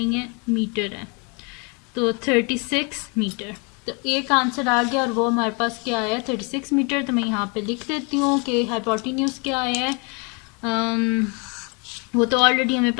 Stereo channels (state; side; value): quieter; right; 32.4 dB